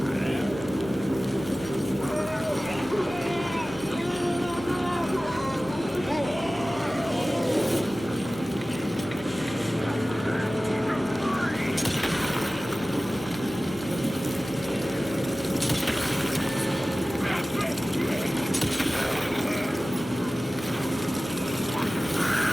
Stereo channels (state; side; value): normal; both; correlation 0.97